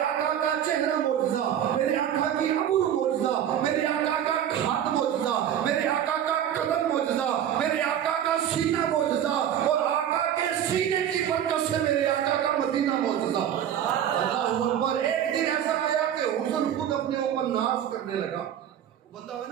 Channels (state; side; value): quieter; left; 10.1 dB